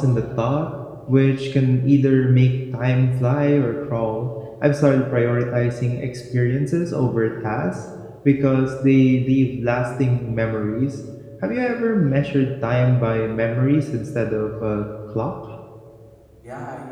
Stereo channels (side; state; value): both; identical; correlation 1.00